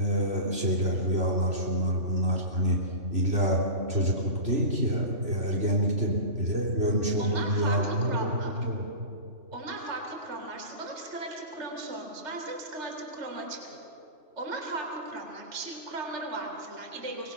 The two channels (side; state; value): left; late; 3.0 ms